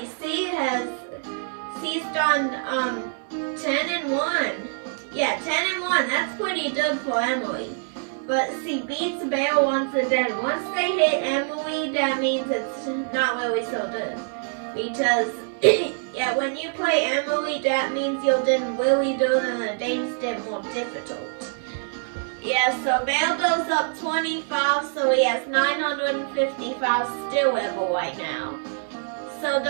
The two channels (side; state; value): left; silent; digital silence